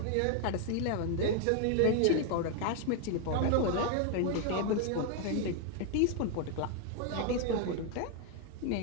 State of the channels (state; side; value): different; both; correlation 0.00